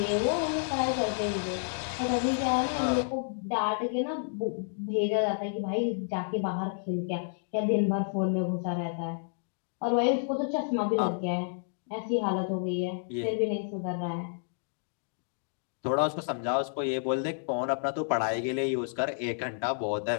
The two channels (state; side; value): silent; right; digital silence